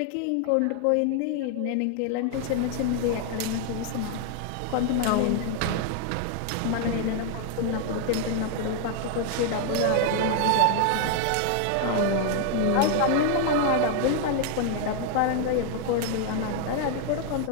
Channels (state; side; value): different; both; correlation 0.00